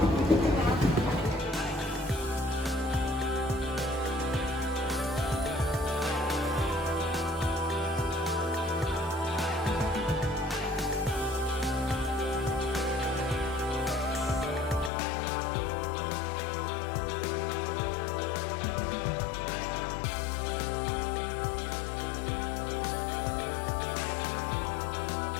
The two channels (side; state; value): right; drops out; at 14.9 s